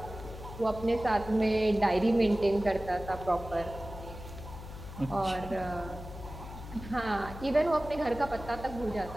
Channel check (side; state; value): left; noise; hum, 12 dB below the sound